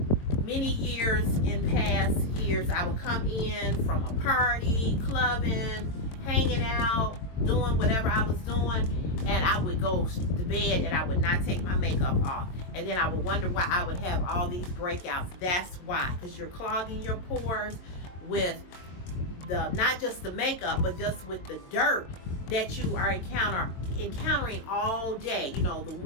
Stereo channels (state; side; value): late; right; 22 ms